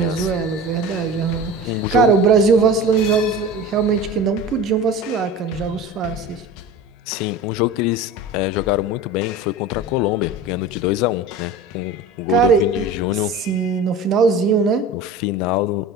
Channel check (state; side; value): normal; both; correlation 0.35